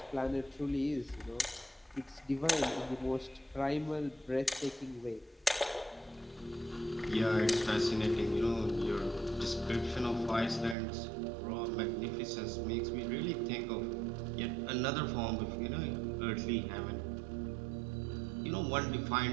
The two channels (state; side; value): drops out; left; at 10.8 s